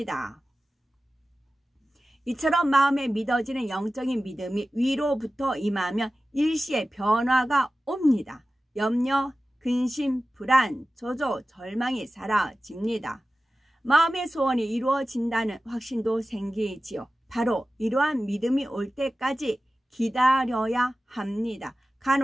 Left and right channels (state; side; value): normal; both; correlation 0.95